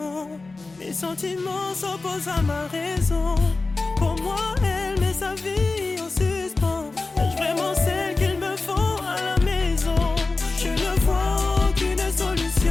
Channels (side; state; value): right; quieter; 3.6 dB